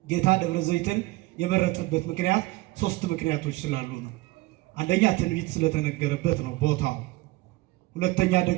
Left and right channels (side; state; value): left; quieter; 19.8 dB